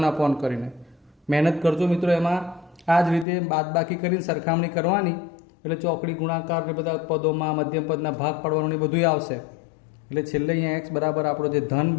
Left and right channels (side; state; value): right; drops out; at 3.2 s